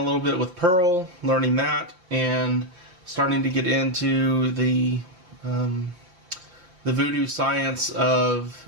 little bit with Perl, learning that, and starting to get into the voodoo science of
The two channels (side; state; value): left; late; 5.8 ms